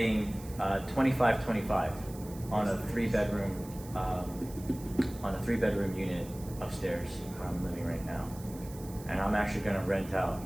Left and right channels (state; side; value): noise; right; hiss, 18 dB below the sound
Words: 25 on a 3-bedroom unit upstairs where I'm living right now, and I'm actually gonna rent out